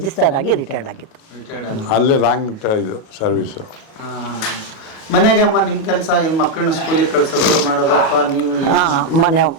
ಆಗಿ ರಿಟೈರ್ಡ್ ಆಗಿತ್ತು. ಅಲ್ಲೇ ರಾಂಗ್ ಇದು ಸರ್ವಿಸು. ಮನೆಗೆ ಅಮ್ಮ ನಿಮ್ಮ ಕೆಲಸ ಏನು, ಮಕ್ಕಳನ್ನ ಸ್ಕೂಲಿಗೆ ಕಳಿಸೋದು ಮಾಡೋದು ಅಥವಾ ನೀವು?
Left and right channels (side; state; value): right; late; 37 ms